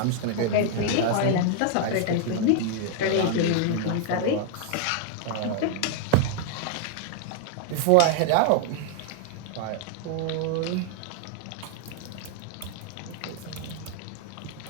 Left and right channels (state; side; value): different; both; correlation 0.00